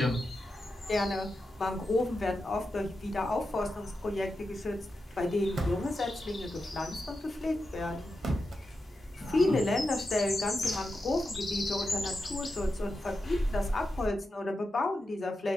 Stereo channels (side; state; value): both; normal; correlation 0.89